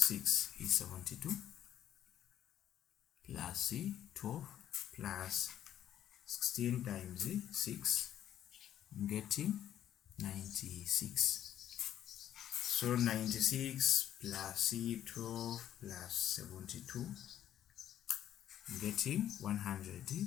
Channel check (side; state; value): right; quieter; 11.1 dB